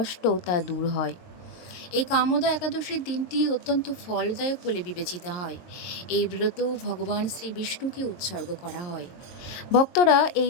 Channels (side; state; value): right; late; 22 ms